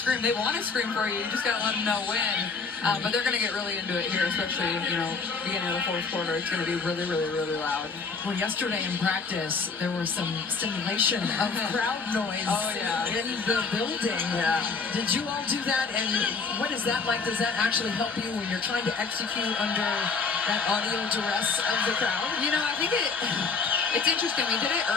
They want to scream for you. You just gotta let them know when. But they're gonna get really into it here, especially beginning of the fourth quarter. It's gonna be really, really, really loud. Well, yesterday in practice, there was some simulation of crowd noise in the building. Yeah. Did you all do that? And what is that like? Does that actually help you when you're trying to execute under that audio duress of the crowd? You know, I think it's interesting. We did it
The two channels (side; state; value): right; quieter; 4.8 dB